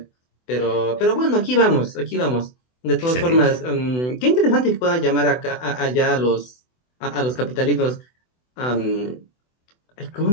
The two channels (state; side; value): late; right; 24 ms